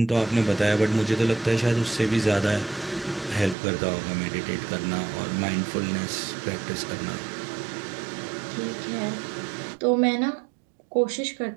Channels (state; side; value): drops out; left; at 3.6 s